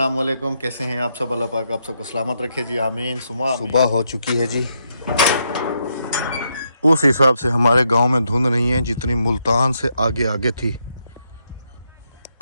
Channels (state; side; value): inverted; both; correlation -0.78